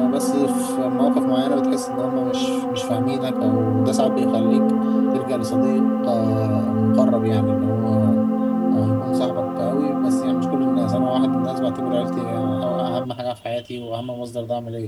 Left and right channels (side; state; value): both; identical; correlation 1.00